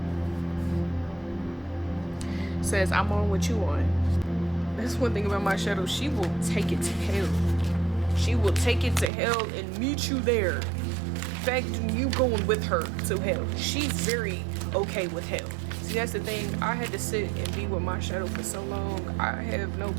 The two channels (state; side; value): drops out; left; at 9.1 s